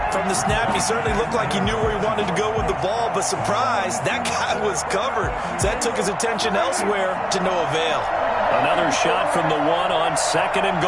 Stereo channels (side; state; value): both; identical; correlation 1.00